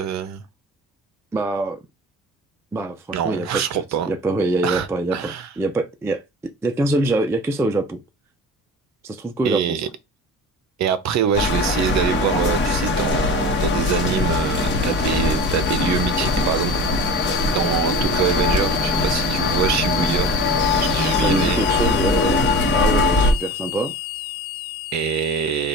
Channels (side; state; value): both; normal; correlation 0.35